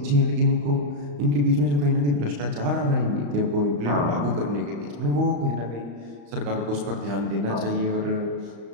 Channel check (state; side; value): late; left; 35 ms